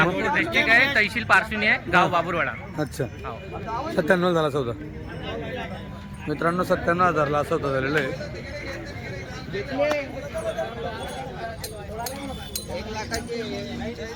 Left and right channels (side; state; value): both; identical; correlation 1.00